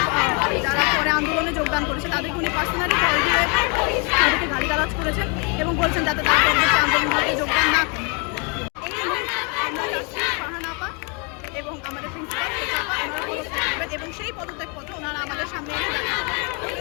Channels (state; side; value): quieter; right; 34.7 dB